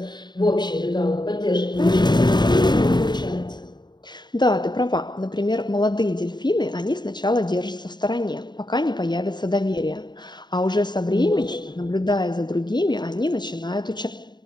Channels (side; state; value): right; late; 0.21 ms